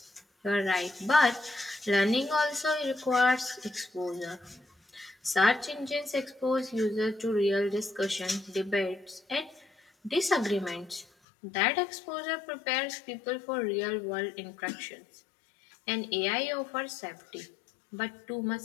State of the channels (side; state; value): right; drops out; at 11.1 s